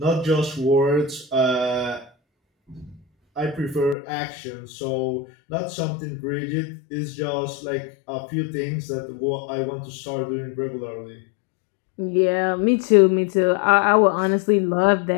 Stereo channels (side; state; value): right; drops out; at 4.0 s